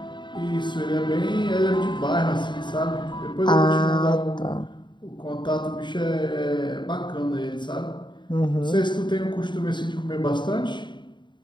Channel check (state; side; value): late; right; 0.22 ms